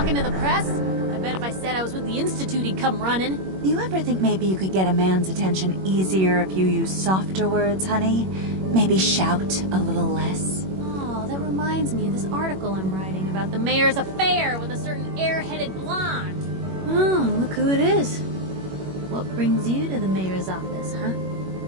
talking to the press? I bet if I said I was with the Institute, he'd come running. You ever think maybe you could get a man's attention easier if you use softer words, honey? Maybe shout a little less? Oh, that reminds me of this article I'm writing about the mayor's affair with a certain airheaded blonde. Oh, look who it is. What brings you to the mayor's office, huh?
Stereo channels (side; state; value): left; late; 21 ms